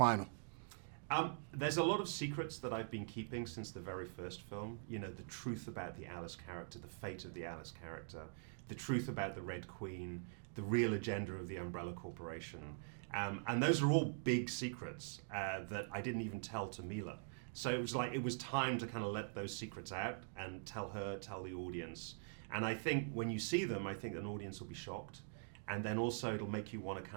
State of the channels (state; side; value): silent; left; digital silence